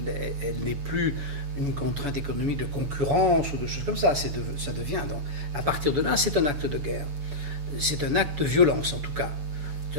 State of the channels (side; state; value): left; late; 7.0 ms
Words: elle n'est plus une contrainte économique de concurrence ou de choses comme ça, ça devient, donc, à partir de là, c'est un acte de guerre. C'est un acte de violence, en tout cas.